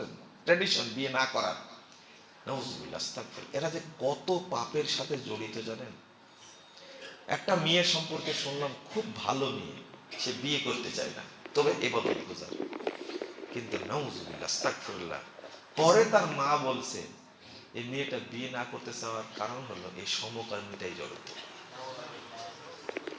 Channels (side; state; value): both; identical; correlation 1.00